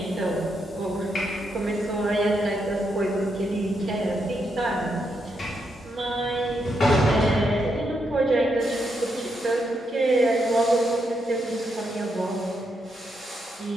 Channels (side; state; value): both; normal; correlation 0.80